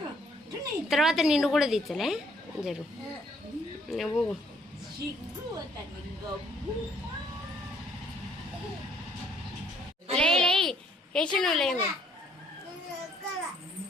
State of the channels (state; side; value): normal; both; correlation 0.65